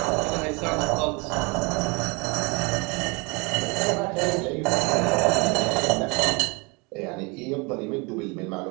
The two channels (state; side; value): quieter; left; 29.4 dB